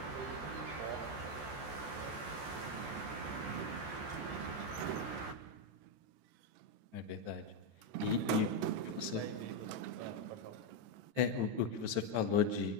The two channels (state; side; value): late; left; 14 ms